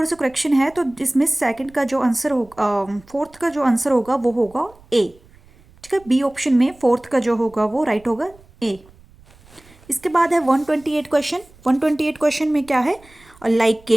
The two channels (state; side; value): noise; right; rumble, 27 dB below the sound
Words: सा करेक्शन है, तो इसमें सेकंड का जो आंसर होगा, फोर्थ का जो आंसर होगा वो होगा ए। ठीक है, बी ऑप्शन में फोर्थ का जो होगा वो राइट होगा ए। इसके बाद है 128 क्वेश्चन। 128 क्वेश्चन में क्या है,